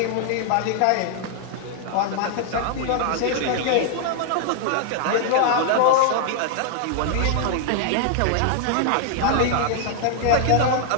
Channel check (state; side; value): different; both; correlation 0.00